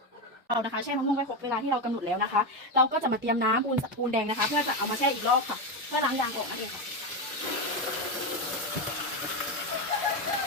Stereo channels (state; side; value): normal; both; correlation 0.12